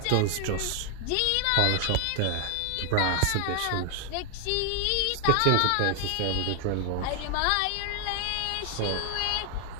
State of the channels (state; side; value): different; both; correlation 0.00